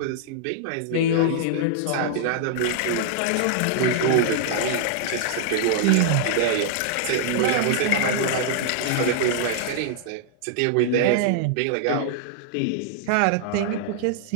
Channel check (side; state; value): both; different; correlation -0.01